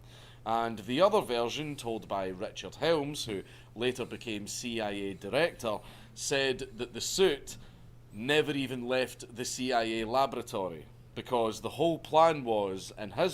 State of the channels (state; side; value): identical; both; correlation 1.00